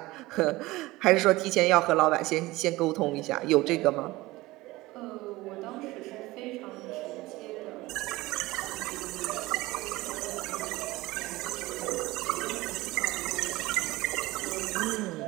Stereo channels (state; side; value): quieter; left; 19.6 dB